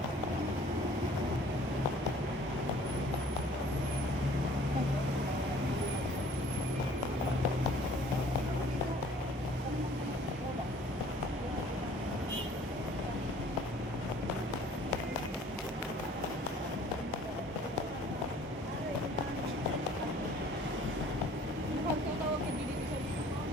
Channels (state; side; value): normal; both; correlation 0.53